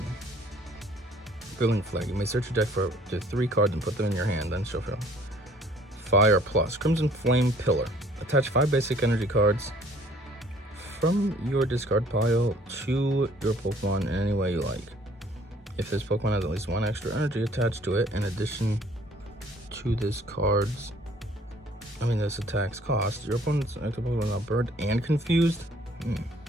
Filling Flag. You may search your deck for up to 3 cards and put them in your hand, then shuffle. Fire Plus. Crimson Flame Pillar. Attach 5 basic energy cards from your discard pile to your Pokemon in any way you like. If this Pokemon has at least 1 extra energy attached to it, in addition to this attack's cost, your opponent's active Pokemon is now burned and confused. You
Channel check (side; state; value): both; normal; correlation 0.57